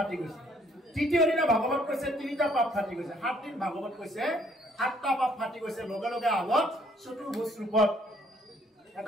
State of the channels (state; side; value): normal; both; correlation 0.64